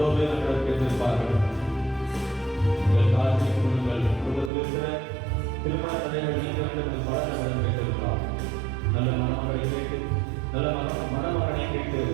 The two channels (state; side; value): drops out; left; at 4.5 s